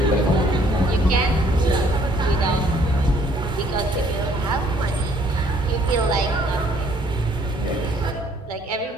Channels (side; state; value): both; normal; correlation 0.62